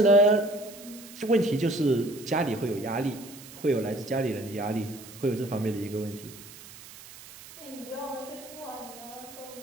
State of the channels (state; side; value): noise; right; hiss, 17 dB below the sound